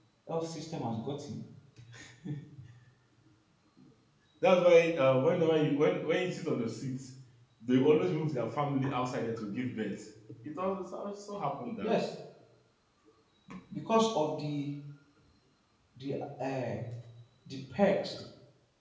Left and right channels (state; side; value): identical; both; correlation 1.00